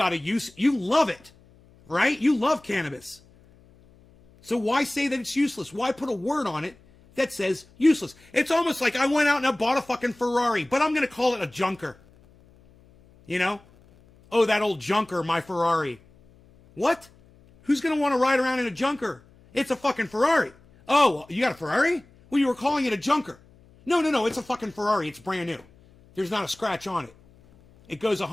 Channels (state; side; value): noise; left; hum, 28 dB below the sound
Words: a use. You love it, right? You love cannabis. So why say that it's useless? Why put a word on it that says useless? It's almost like I went out and I bought a fucking Ferrari, but I'm going to call it a junker. You know? Oh, that old junker, my Ferrari. What? Who's going to want to ride around in a junker? It's a fucking Ferrari. Oh, you got a Ferrari? Well, you were calling it a junker. No, it's a fucking Ferrari. It's brand new. There's not a scratch on it. It goes